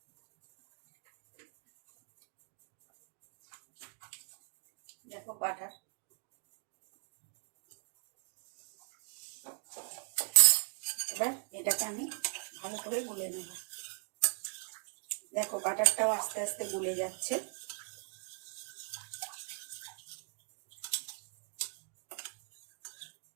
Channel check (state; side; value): silent; left; 52 dB below the other